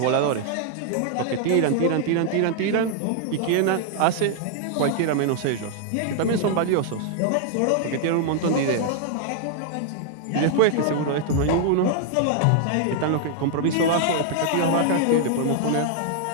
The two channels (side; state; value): both; different; correlation 0.00